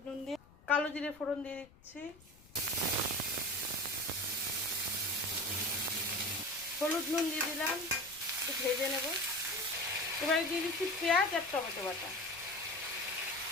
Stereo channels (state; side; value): noise; left; rumble, 24 dB below the sound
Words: নুন দিয়ে, কালো জিরে ফোড়ন দিয়ে দিচ্ছি, হলুদ নুন দিয়ে দিলাম, একটু ভেজে নেব। এবারে দিয়ে দিচ্ছি পেঁয়াজ আর টমেটো বাটা,